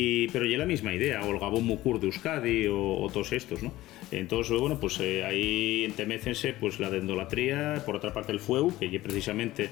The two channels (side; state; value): right; quieter; 16.6 dB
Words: ya la misma idea, o el Gabón Mucur de Euskadi, o todos estos, ¿no? Entonces, bueno, pues ahí entemécense pues la dendolatría, por otra parte el fueu, que es precisamente